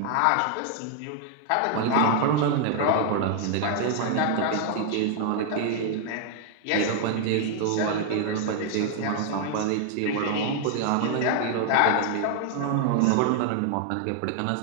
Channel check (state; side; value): different; both; correlation 0.00